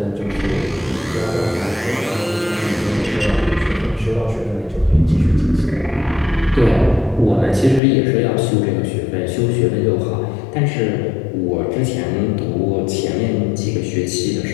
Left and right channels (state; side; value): drops out; right; at 7.8 s